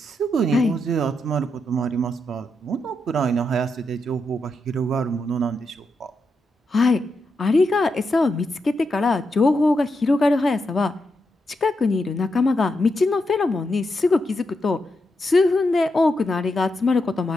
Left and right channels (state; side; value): normal; both; correlation 0.84